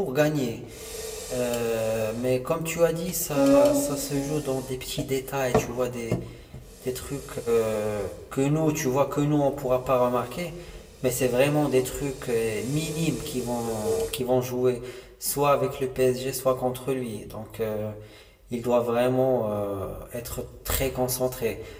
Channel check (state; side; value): identical; both; correlation 1.00